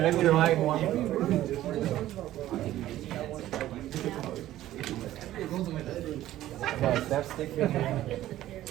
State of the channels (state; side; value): quieter; left; 14.1 dB